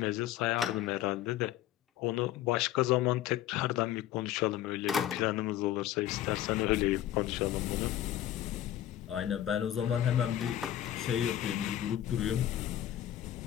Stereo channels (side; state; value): right; quieter; 12.3 dB